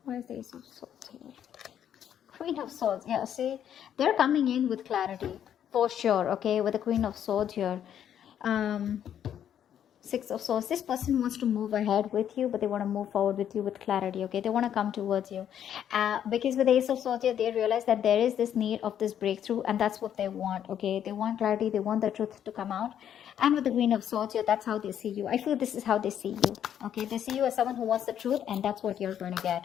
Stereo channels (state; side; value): quieter; right; 9.7 dB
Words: Why is the Ace of Swords here? Queen of Swords, yeah, see, they're coming in with clarity for sure, okay, with the Queen of Swords here. Six of Swords, this person wants to move ahead with you, but they want to move forward with you with clarity, okay? They want to come towards you, because with the Ace of Swords here, they realize that there is this need of this breakthrough, and that's what they want, okay? They want clarity, they want the truth to come out. And with the Queen of Swords here, that's how they see you. I feel this is how they see you, okay? They see you as someone who wants the truth, and that's what you're going to